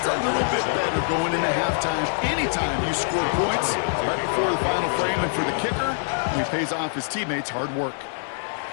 a little bit better going into halftime. Anytime you score points right before the final frame, and for the kicker, he pays off his teammates' hard work.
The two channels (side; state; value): right; silent; digital silence